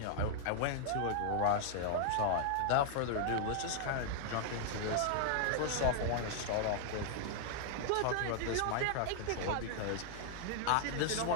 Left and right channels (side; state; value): both; different; correlation -0.01